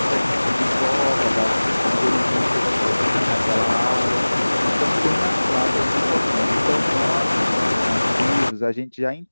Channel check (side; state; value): both; inverted; correlation -1.00